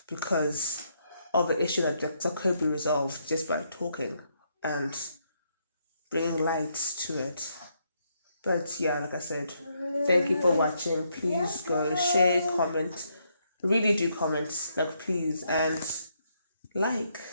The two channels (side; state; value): both; inverted; correlation -0.76